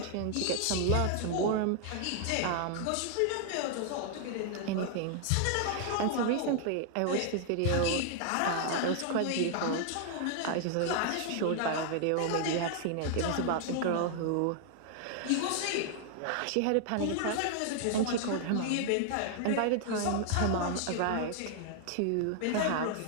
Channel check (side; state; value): both; different; correlation 0.00